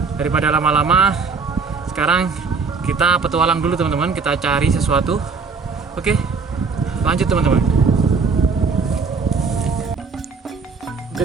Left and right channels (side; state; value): left; quieter; 4.9 dB